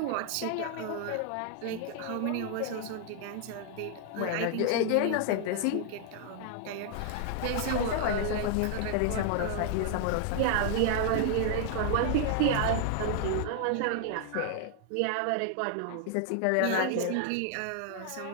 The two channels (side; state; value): both; different; correlation 0.00